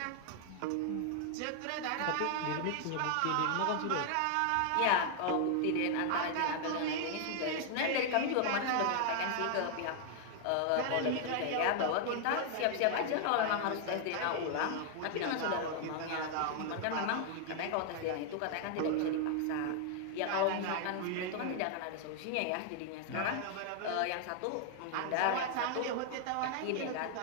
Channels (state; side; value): different; both; correlation 0.00